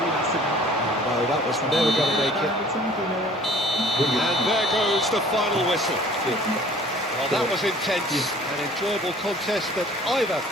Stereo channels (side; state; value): both; normal; correlation 0.51